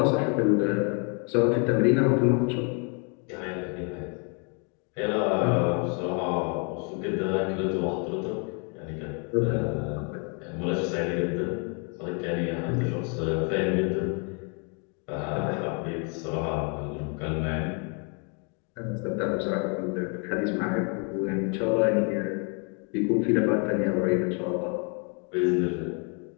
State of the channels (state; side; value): quieter; right; 37.0 dB